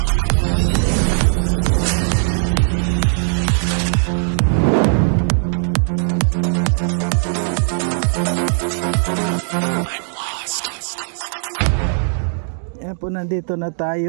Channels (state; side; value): silent; left; digital silence